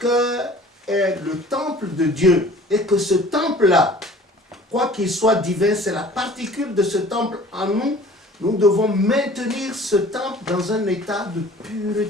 est le temple de Dieu. Et que ce temple-là, quoi qu'il soit divin, c'est la particule de ce temple en nous. Nous devons maintenir ce temple dans un état de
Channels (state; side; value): normal; both; correlation 0.48